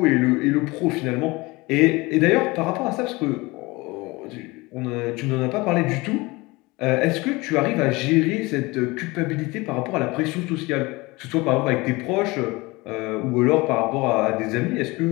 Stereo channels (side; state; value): right; quieter; 23.1 dB